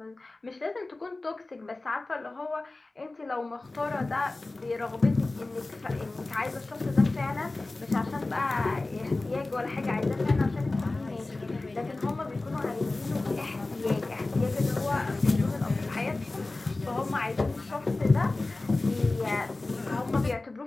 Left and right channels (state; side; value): quieter; right; 3.1 dB